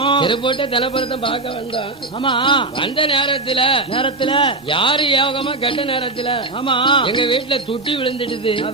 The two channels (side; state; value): left; quieter; 3.1 dB